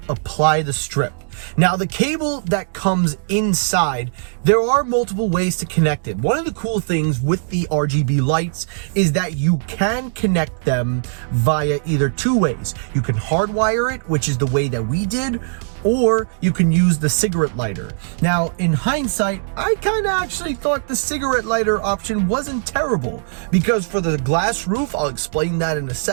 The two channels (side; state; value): left; silent; digital silence